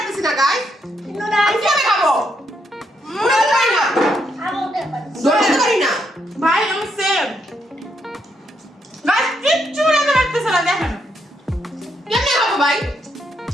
না গাইস। আমি কিভাবে খাবো? উড়াতে পারি না, ধরতে পারি না। ভাই আমি সেম। গাইস কিচ্ছু রান্না করতেছ না, দেখেন কেমনে খাবো ভাই?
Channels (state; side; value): normal; both; correlation 0.78